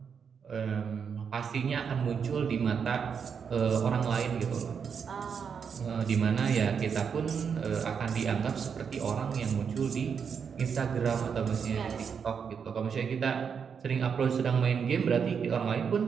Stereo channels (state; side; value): quieter; left; 6.7 dB